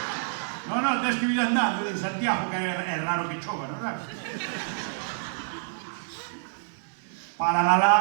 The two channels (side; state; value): left; silent; 60 dB below the other